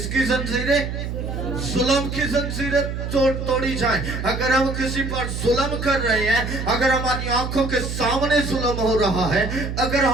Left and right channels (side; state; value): right; noise; hum, 5 dB below the sound